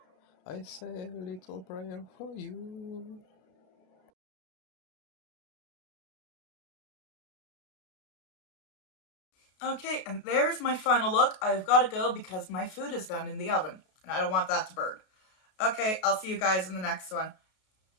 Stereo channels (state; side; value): late; right; 32 ms